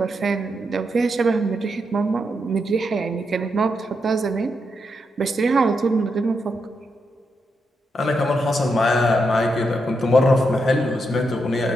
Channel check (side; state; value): both; normal; correlation 0.83